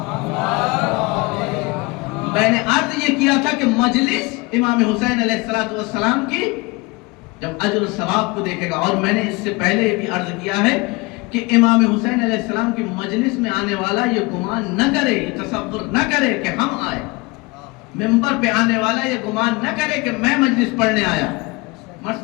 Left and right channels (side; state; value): right; quieter; 25.0 dB